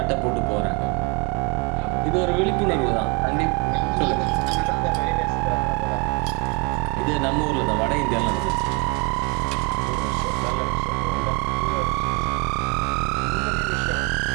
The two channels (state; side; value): quieter; left; 32.7 dB